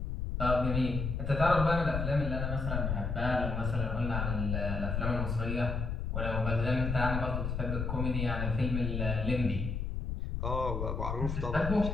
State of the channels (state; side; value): noise; left; rumble, 2 dB below the sound